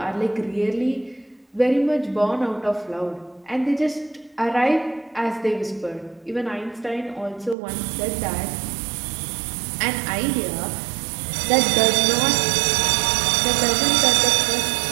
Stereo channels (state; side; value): drops out; left; at 7.6 s